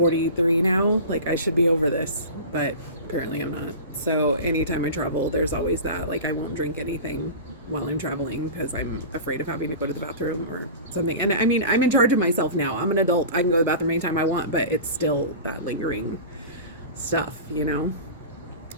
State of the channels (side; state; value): both; inverted; correlation -0.33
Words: now, like I should be over this, but apparently I'm not. So anytime I travel, there's always that, like I won't drink anything while I'm traveling because I'm afraid of having to go to the bathroom or something. And I mean, I'm in charge of myself now. I'm an adult. I can go to the bathroom anytime I want, but it's still that lingering stuff, you know?